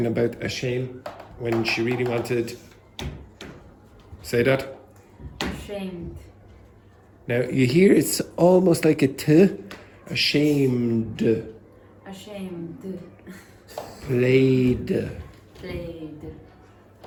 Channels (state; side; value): identical; both; correlation 1.00